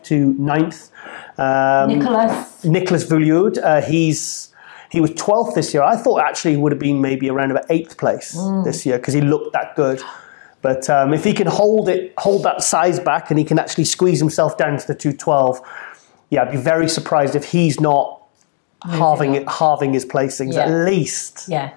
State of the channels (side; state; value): right; silent; digital silence